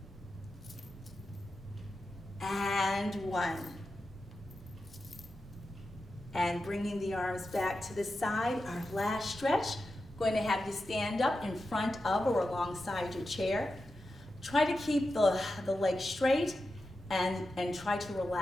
and 1. And bringing the arms back to the side, our last stretch. Going to have you stand up in front of or alongside your chair. Try to keep the legs straight. And try to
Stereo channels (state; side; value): normal; both; correlation 0.91